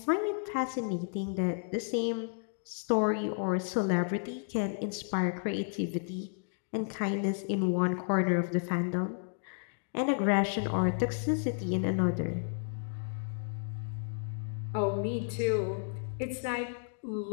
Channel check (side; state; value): right; silent; digital silence